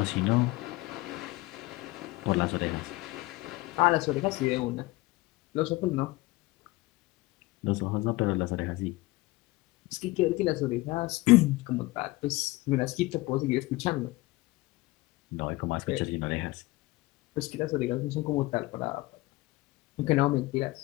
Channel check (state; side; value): quieter; right; 20.6 dB